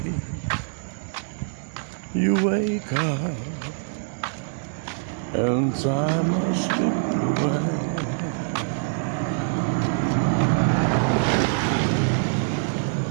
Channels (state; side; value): silent; left; 62 dB below the other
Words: You wake up and time has slipped away.